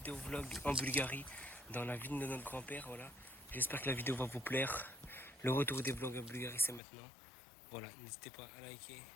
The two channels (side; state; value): right; drops out; at 6.8 s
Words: vlog en Bulgarie, dans la ville de notre grand-père, voilà. J'espère que la vidéo va vous plaire. Le retour des vlogs en Bulgarie, c'est maintenant. Voilà, n'hésitez pas à liker,